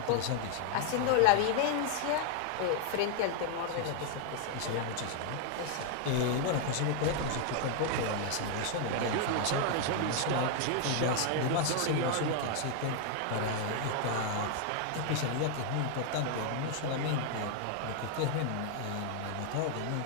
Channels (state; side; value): different; both; correlation 0.00